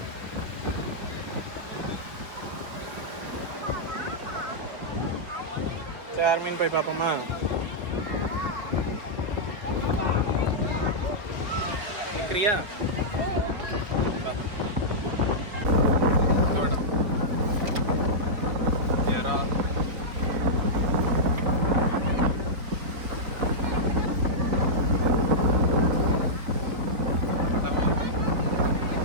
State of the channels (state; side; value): late; left; 4.7 ms